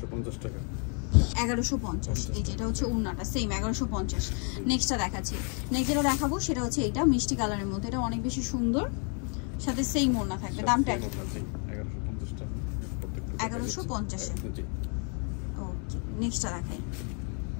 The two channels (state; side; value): quieter; right; 38.9 dB